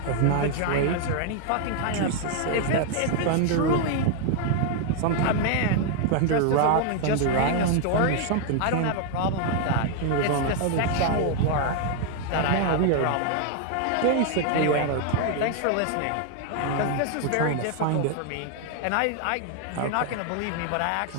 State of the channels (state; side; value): different; both; correlation 0.00